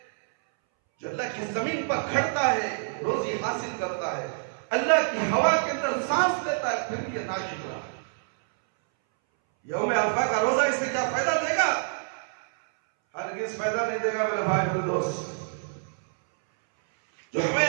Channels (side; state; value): left; silent; 60 dB below the other